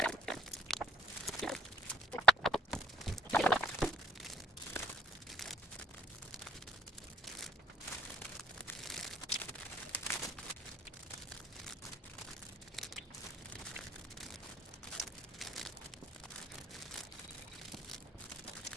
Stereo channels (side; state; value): both; normal; correlation 0.62